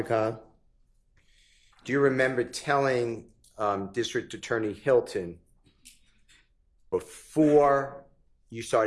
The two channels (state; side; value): identical; both; correlation 1.00